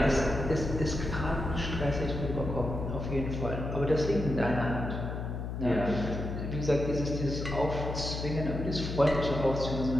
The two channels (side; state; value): left; noise; hum, 5 dB below the sound